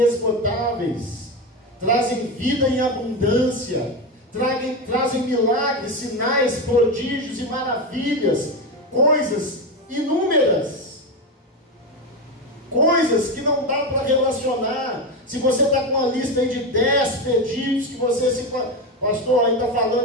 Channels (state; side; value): normal; both; correlation 0.15